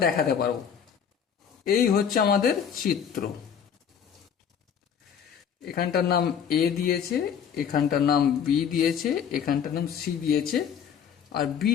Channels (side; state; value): right; quieter; 7.8 dB